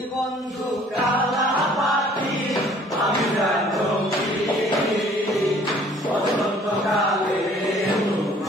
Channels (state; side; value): normal; both; correlation 0.55